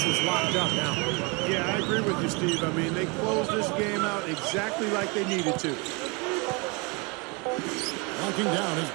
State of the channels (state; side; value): quieter; left; 29.8 dB